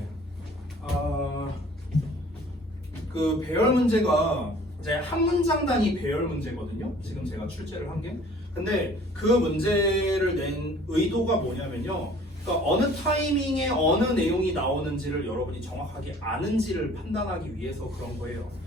그 배열 문제가 이제 한 문장 단위 배열 문제거든요. 지금 제가 출제를 한 게. 근데 그 문제를 낸 의도가 뭐냐면요. 그러니까 어느 타이밍에 어느 내용이 나오는지를 여러분이 정확하게 아는지를 판단하기 위해서 그런 거예요.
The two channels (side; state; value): both; normal; correlation 0.51